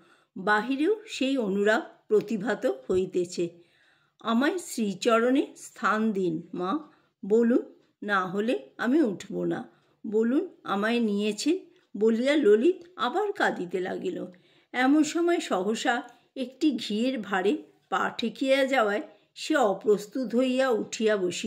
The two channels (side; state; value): both; identical; correlation 1.00